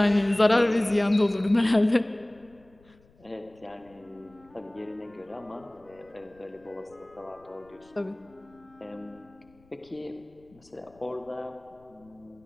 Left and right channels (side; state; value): left; noise; rumble, 29 dB below the sound